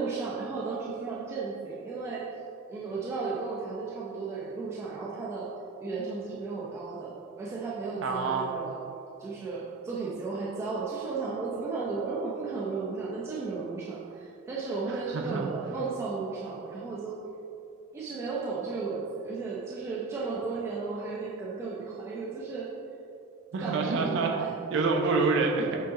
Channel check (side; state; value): left; quieter; 3.8 dB